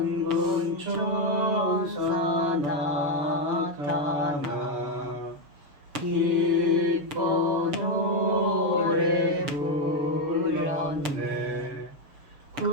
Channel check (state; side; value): late; left; 6.8 ms